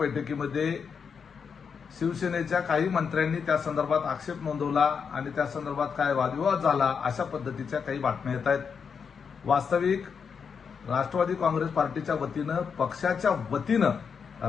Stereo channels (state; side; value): quieter; right; 6.3 dB